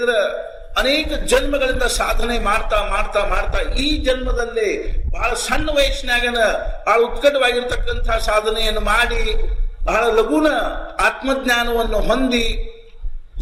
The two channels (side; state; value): both; identical; correlation 1.00